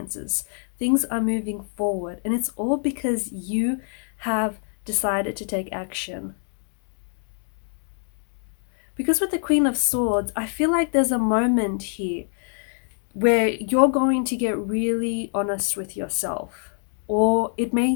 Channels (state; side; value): silent; right; 61 dB below the other